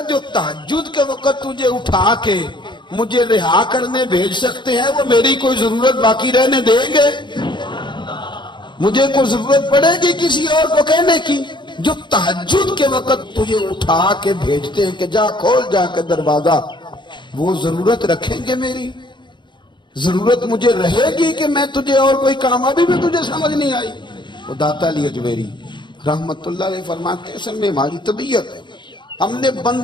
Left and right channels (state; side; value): late; right; 0.22 ms